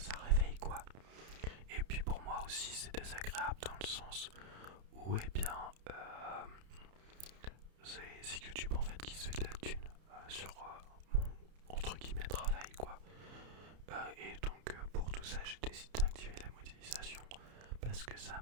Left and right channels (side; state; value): left; late; 31 ms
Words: réveille quoi. Et puis pour moi aussi c'est désagréable dans le sens où eh bien c'est YouTube en fait qui se fait de la thune sur mon entre guillemets travail quoi. Et donc pour tout ça j'ai décidé d'activer la modélisation parce que ça